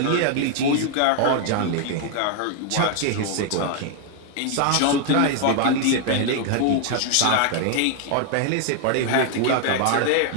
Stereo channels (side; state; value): both; different; correlation 0.00